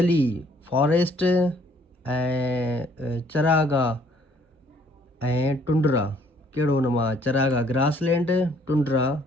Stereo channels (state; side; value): normal; both; correlation 0.62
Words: फॉरेस्ट, ऐं चरागाह ऐं टुंड्रा कहिड़ो? हुन मां चरागाह ग्रासलैंड, टुंड्रा